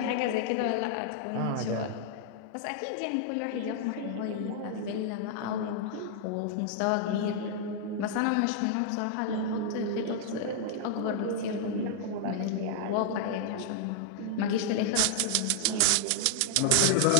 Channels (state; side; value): different; both; correlation -0.01